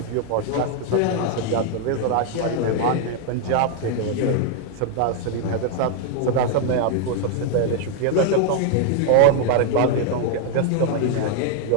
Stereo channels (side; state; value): both; different; correlation 0.00